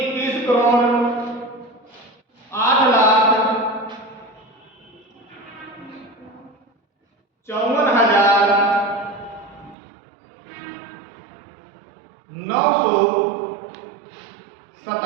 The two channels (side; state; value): left; drops out; at 9.8 s